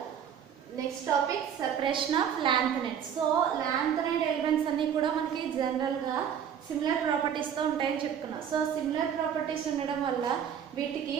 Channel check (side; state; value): left; quieter; 8.5 dB